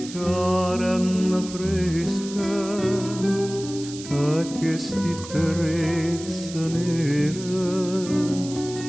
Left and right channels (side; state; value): right; noise; hiss, 13 dB below the sound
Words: carne fresca, e che sti trezza nera,